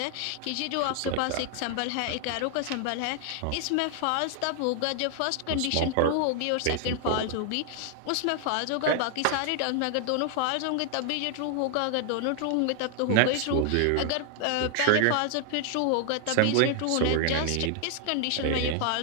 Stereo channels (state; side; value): different; both; correlation 0.00